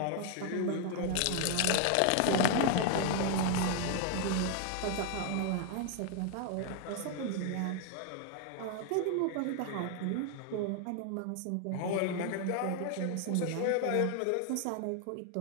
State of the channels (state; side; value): different; both; correlation 0.00